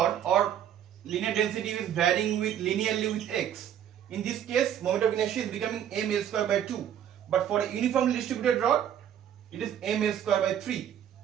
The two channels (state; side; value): quieter; left; 9.9 dB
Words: or linear density is varying with linearly with x. In this case, moment of inertia is becoming m L square by 2. But for a uniformly distributed rod, it is m L square by 3.